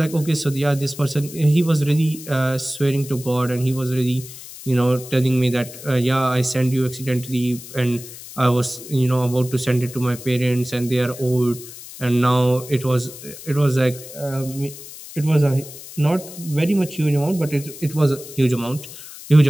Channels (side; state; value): left; noise; hiss, 15 dB below the sound